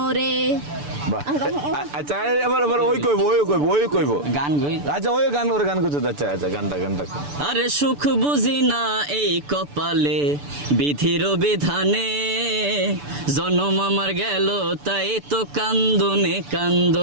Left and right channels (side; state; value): left; late; 6.9 ms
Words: বাহ আচ্ছা এবার ওই কইব গান গই আচ্ছা ওই গান ওর গান করতে আচ্ছা গানটা আরে সুখ বুঝি না এই কপালে বিধির বিধানে জনম আমার গেল তাই তো কান্দনে